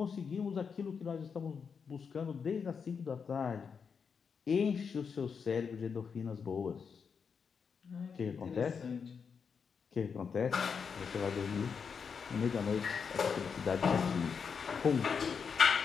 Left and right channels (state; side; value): quieter; right; 6.1 dB